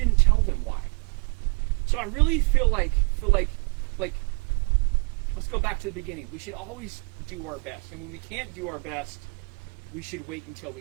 tell them why. So I really feel like let's go back to the beginning. We should always do our best. And when we can't do our best, we should wait until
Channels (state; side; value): quieter; left; 33.9 dB